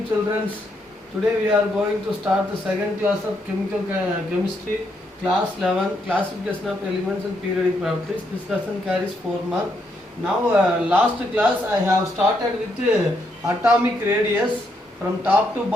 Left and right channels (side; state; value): both; normal; correlation 0.77